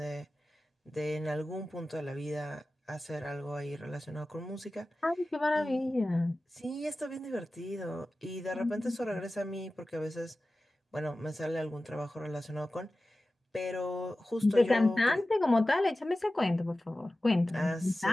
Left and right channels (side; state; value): both; normal; correlation 0.95